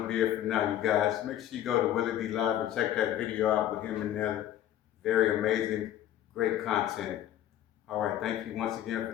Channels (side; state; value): right; quieter; 11.9 dB